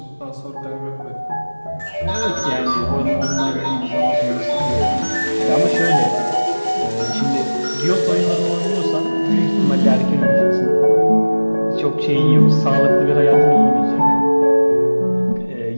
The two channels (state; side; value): inverted; both; correlation -1.00